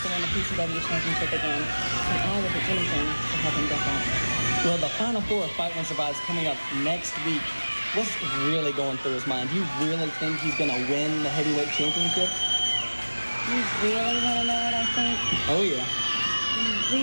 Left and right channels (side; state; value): both; inverted; correlation -1.00